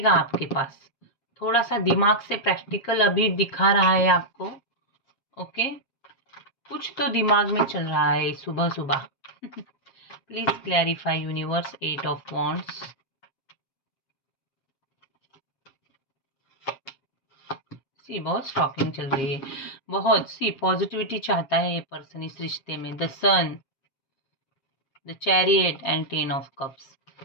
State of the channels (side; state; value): right; late; 7.4 ms